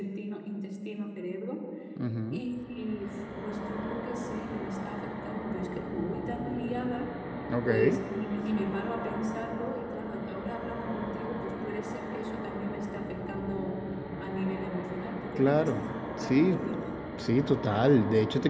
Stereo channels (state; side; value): identical; both; correlation 1.00